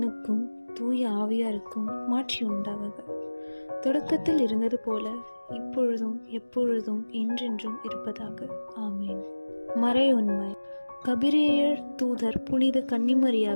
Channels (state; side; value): inverted; both; correlation -1.00